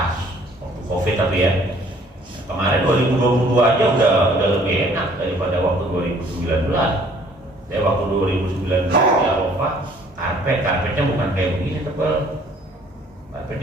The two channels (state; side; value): normal; both; correlation 0.58